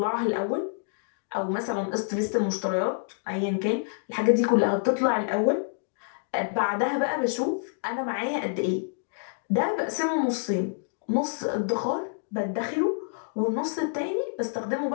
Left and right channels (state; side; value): silent; right; digital silence